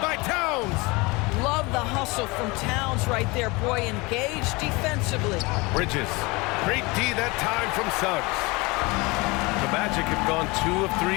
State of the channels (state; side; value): quieter; right; 25.0 dB